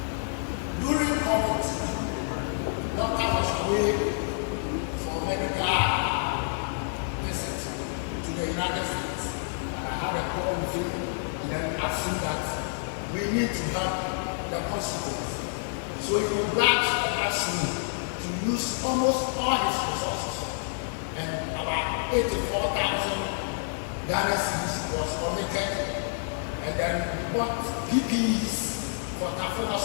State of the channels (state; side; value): silent; right; digital silence